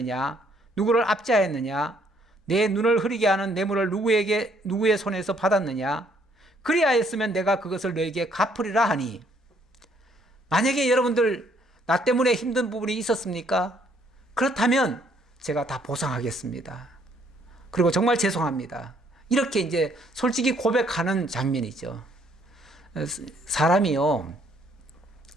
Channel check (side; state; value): both; normal; correlation 0.66